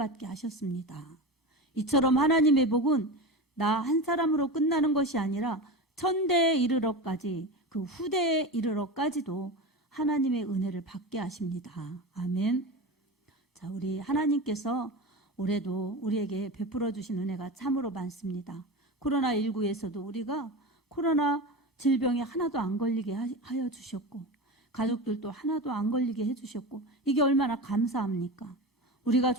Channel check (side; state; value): both; normal; correlation 0.25